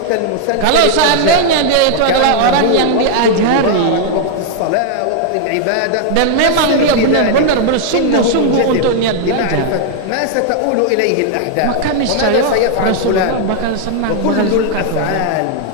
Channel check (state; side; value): different; both; correlation 0.00